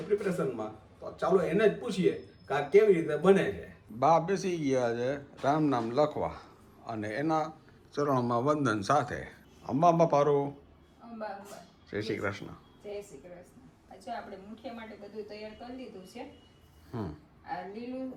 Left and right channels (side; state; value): both; identical; correlation 1.00